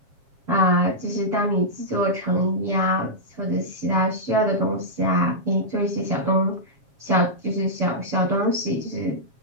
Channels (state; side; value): late; left; 7.4 ms